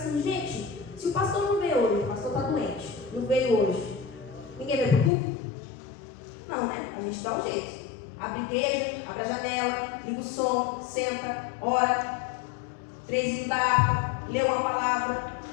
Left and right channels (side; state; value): right; drops out; at 5.1 s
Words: gente, se o pastor não veio hoje, o pastor está doente, não veio hoje, ninguém vai para o culto? Não, né? A gente dá um jeito. Abre a igreja, abre a janela, liga o som, senta, ora, 3 hinos da harpa, lê uma palavra,